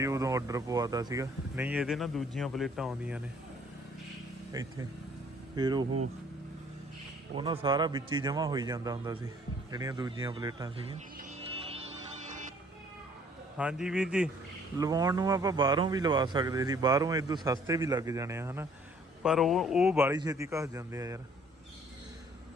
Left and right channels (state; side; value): normal; both; correlation 0.59